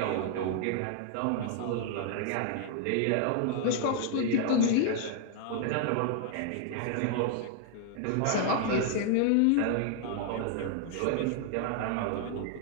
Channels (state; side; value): different; both; correlation 0.00